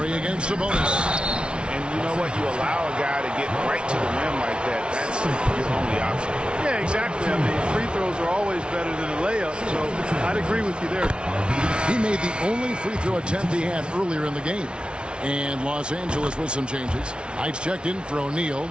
against Sabonis. And you know what? You allow a guy to get right to the rim like that. That's your only option. Yeah, exactly. I mean, free throws are always better than a layup, so I'd agree with you there. He made the only free throw attempt he had earlier in the game. And Los Angeles with some changes. Heights checked in for O'Neal,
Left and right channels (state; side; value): late; left; 0.057 ms